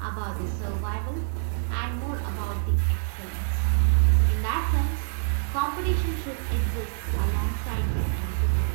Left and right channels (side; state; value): left; silent; digital silence